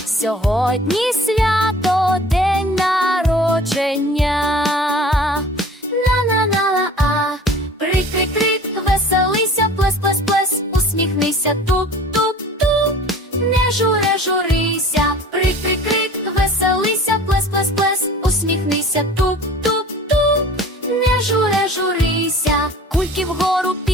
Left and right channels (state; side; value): normal; both; correlation 0.44